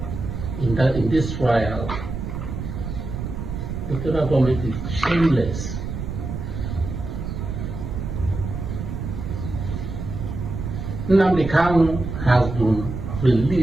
in this trial. The federal government is shameless. Nnamdi Kanu has been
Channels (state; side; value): noise; right; rumble, 6 dB below the sound